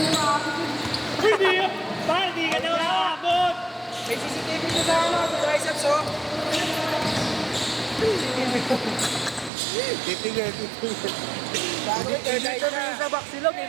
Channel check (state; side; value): drops out; left; at 9.5 s